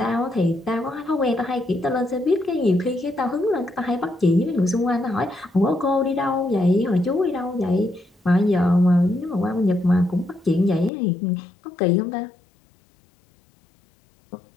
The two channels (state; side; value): drops out; right; at 10.9 s